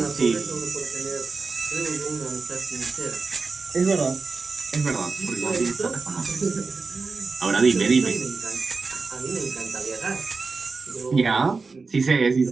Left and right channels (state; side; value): quieter; left; 4.3 dB